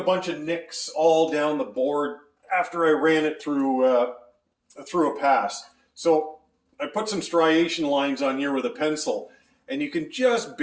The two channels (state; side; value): identical; both; correlation 1.00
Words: bunch of nicks all down the board after I ran it through a pass. So I put some striation lines on here with a pencil, and you can just